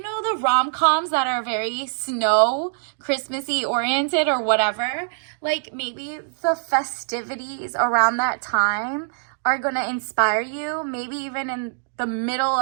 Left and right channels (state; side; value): silent; left; digital silence